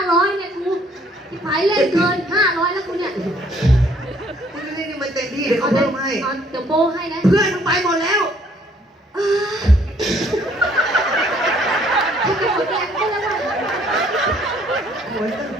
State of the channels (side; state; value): both; normal; correlation 0.62